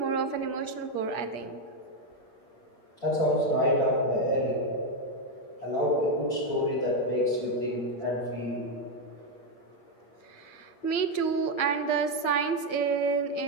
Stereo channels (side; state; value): right; late; 8.6 ms